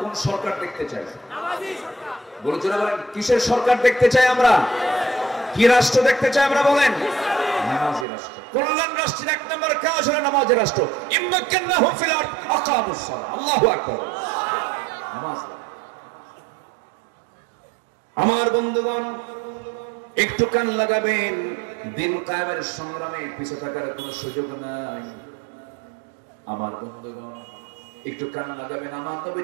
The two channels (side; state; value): left; drops out; at 8.1 s